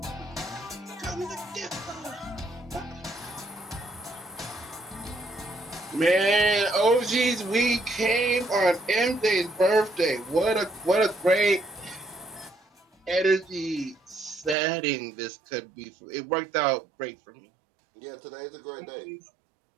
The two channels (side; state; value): left; drops out; at 14.6 s